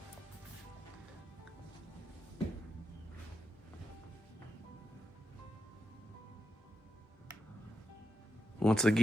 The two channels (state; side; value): normal; both; correlation 0.86